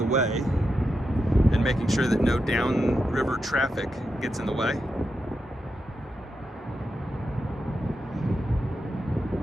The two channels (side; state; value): both; normal; correlation 0.87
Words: way and making sure that no downriver traffic gets in the way.